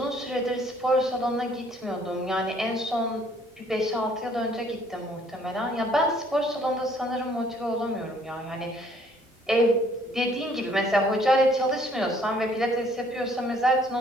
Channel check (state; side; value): normal; both; correlation 0.61